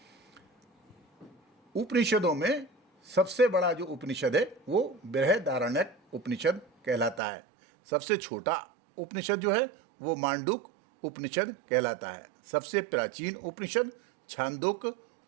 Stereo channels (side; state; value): left; drops out; at 7.2 s